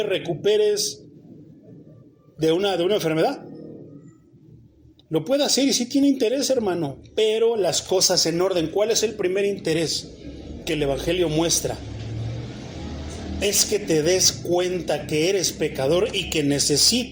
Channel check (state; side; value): identical; both; correlation 1.00